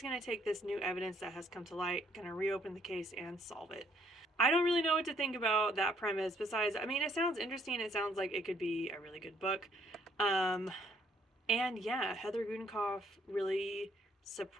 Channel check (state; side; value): normal; both; correlation 0.66